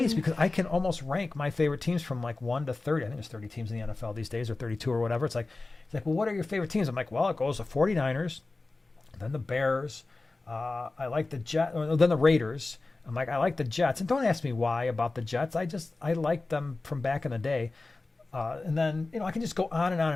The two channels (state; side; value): quieter; right; 3.4 dB